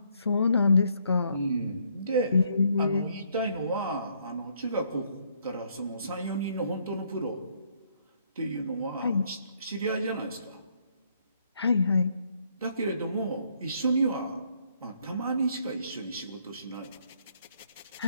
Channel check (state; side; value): inverted; both; correlation -0.69